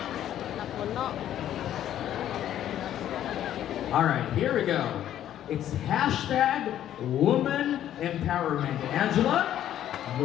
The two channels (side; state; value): right; quieter; 11.4 dB